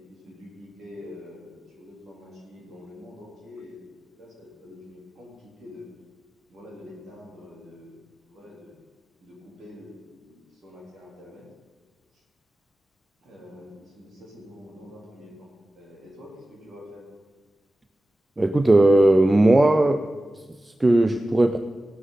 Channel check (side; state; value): both; normal; correlation 0.95